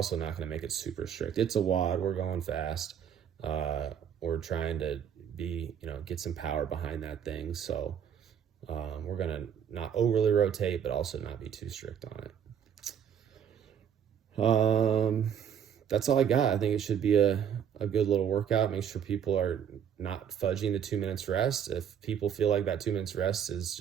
not gonna make it super strict. It's a WOD, we're going fast. We're trying to get some power behind that thing. So we're gonna not overly rotate, but also not be too strict on it. That's all I got. I think it should be a good little workout. Make sure people are not fudging the 2 minutes rest. If people feel like that 2 minutes rest is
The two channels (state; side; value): quieter; left; 8.5 dB